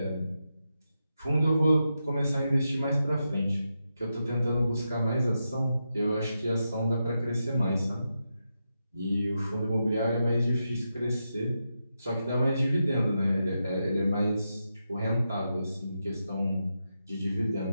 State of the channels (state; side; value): inverted; both; correlation -0.87